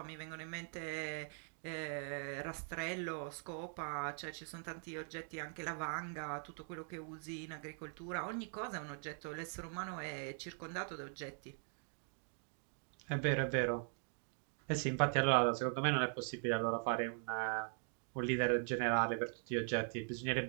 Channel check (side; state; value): left; silent; 50 dB below the other